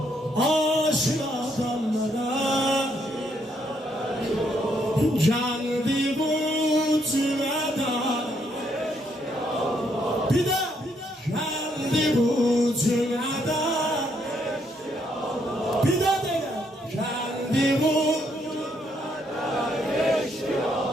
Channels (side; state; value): both; normal; correlation 0.73